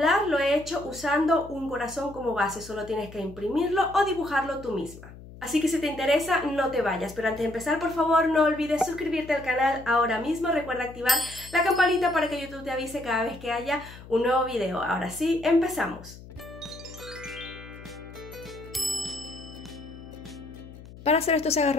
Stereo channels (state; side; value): noise; left; hum, 17 dB below the sound